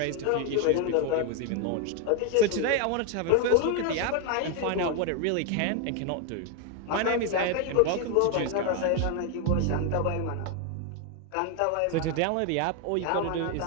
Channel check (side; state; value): both; different; correlation 0.01